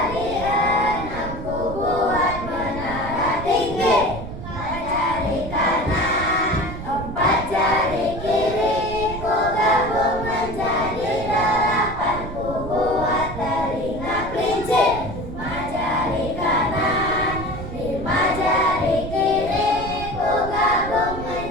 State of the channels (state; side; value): noise; right; rumble, 9 dB below the sound